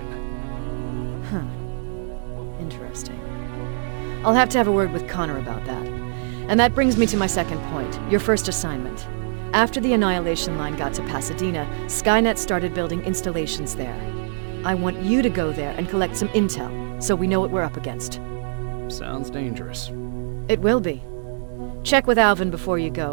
Huh. Interesting. I'll have to have a word with Connor about that. And that brings me to my second point, your first assignment. After the Annihilation Line got to Pasadena, Skynet started building installations there. I want you to go there and collect some intel, so we know what we're up against. Sounds dangerous. It will be. Check with Alvin before you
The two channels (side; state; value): left; silent; 63 dB below the other